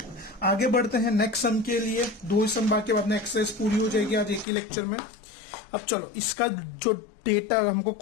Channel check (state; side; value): drops out; right; at 4.5 s